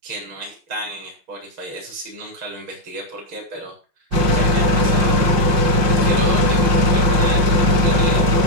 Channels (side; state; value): left; late; 5.7 ms